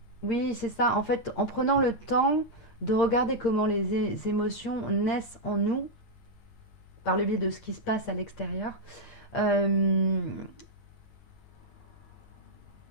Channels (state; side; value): late; right; 8.6 ms